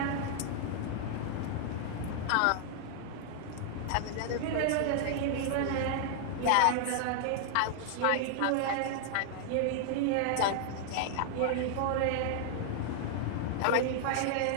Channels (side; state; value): both; different; correlation -0.01